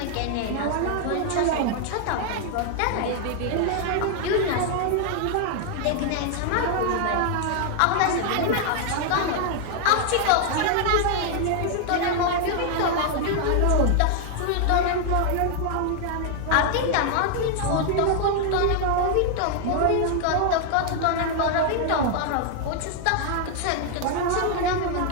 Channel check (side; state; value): both; different; correlation 0.00